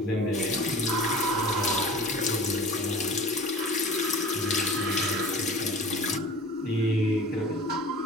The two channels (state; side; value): normal; both; correlation 0.41